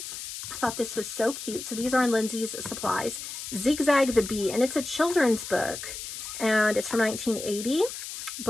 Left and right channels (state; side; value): noise; left; hiss, 8 dB below the sound